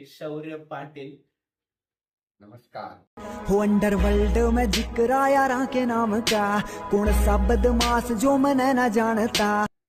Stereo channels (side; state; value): both; identical; correlation 1.00